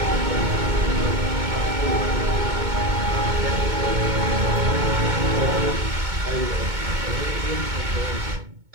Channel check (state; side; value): late; left; 2.2 ms